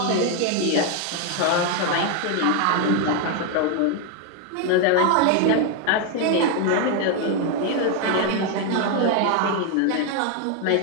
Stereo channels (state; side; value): different; both; correlation 0.01